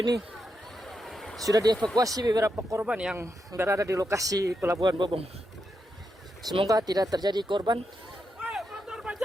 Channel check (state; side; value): normal; both; correlation 0.85